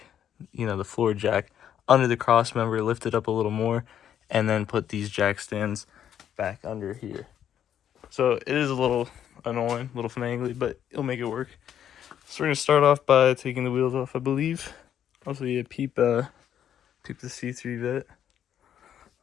the floor jack, under the Crossmember, lift it up a little more, and then put these jack stands back under here. So it is a little annoying, a little finagly, but it'll make it work. So we're gonna start off by taking the wheels off, I believe. Also, peep the C3 vet.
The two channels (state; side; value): quieter; right; 9.8 dB